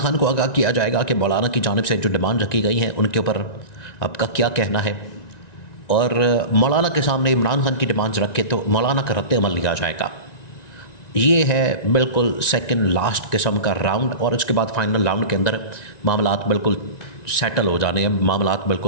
کو آگاہ کیا جائے گا کہ مولانا کی جانب سے جو ڈیمانڈ رکھی گئی ہیں ان کے اوپر آپ کا کیا کہنا ہے، اور مولانا کے سامنے عمران خان کی ڈیمانڈز رکھ کے تو مولانا کا رد عمل لیا جائے گا۔ یہ ہے بالکل سیکنڈ لاسٹ قسم کا راؤنڈ، اور اس کے بعد فائنل راؤنڈ کے اندر معاملات بالکل سیٹل ہو جانے ہیں، معاملات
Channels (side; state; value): right; late; 1.9 ms